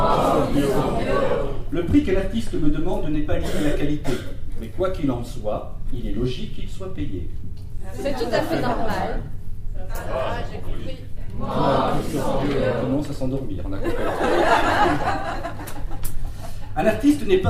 Le prix que l'artiste me demande n'est pas lié à la qualité. Mais quoi qu'il en soit, il est logique qu'il soit payé. C'est tout à fait normal. Ça va, j'ai compris. On commence à s'endormir, on a compris. Un artiste n'est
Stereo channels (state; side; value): identical; both; correlation 1.00